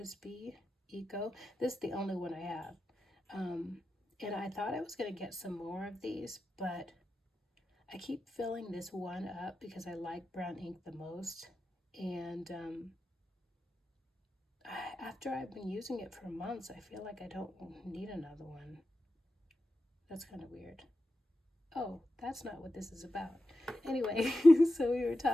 Eco. This is the only one I have. And I thought I was going to get some more of these, but I keep filling this one up because I like brown ink the most. And after I've been using it for months, I feel like I don't need another one. That's kind of weird. Oh, that's not what this is about. Anyway, so we were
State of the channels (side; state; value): both; normal; correlation 0.91